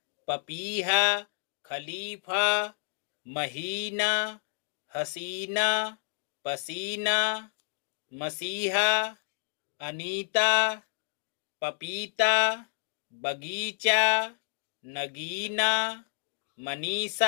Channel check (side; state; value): right; silent; digital silence